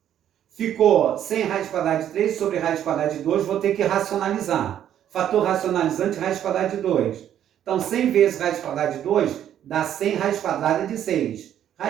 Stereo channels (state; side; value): quieter; left; 10.5 dB